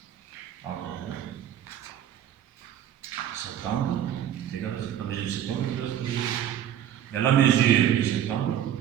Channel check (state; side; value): quieter; left; 10.4 dB